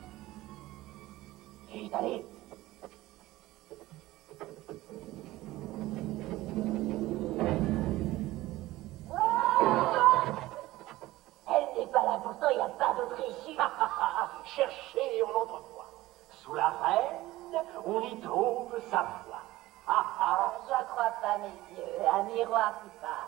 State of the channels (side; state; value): left; quieter; 17.5 dB